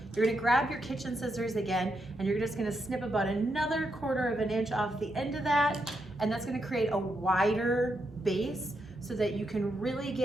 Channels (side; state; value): both; normal; correlation 0.82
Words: you're gonna grab your kitchen scissors again, and you're just gonna snip about another 1/4 of an inch off the end of that, and that's gonna create a wider base so that you can really